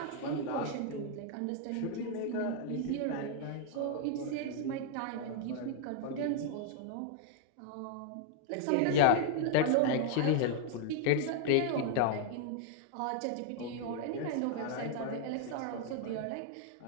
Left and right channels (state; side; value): different; both; correlation -0.01